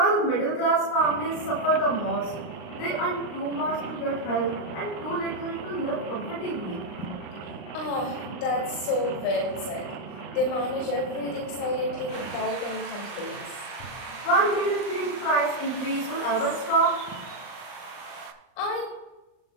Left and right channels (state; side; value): late; right; 39 ms